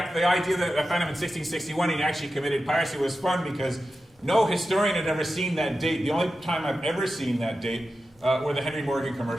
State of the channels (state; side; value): normal; both; correlation 0.92